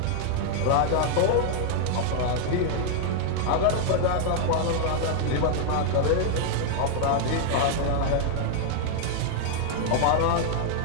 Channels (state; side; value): different; both; correlation 0.00